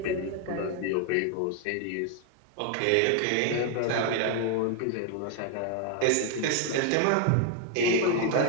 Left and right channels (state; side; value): different; both; correlation 0.00